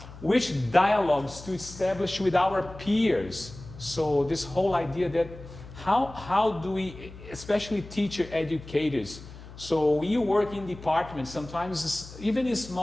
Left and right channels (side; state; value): left; noise; hum, 16 dB below the sound